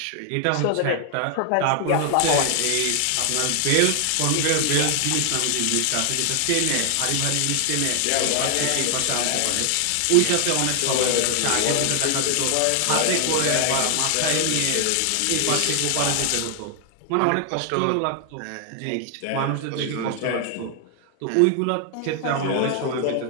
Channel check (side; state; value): both; different; correlation 0.00